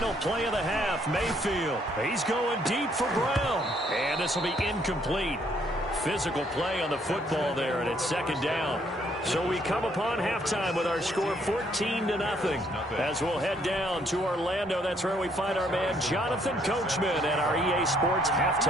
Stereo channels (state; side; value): normal; both; correlation 0.67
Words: play of the half. Mayfield, he's going deep for Brown. And this will be incomplete. Physical play on the football there, and it's second down. So we come upon halftime with our score 14-0 as we'll head down to Orlando. That's where we find our man Jonathan Coachman and our EA Sports